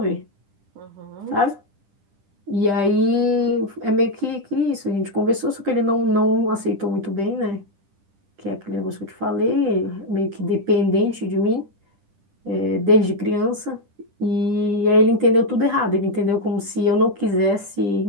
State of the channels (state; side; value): late; left; 10 ms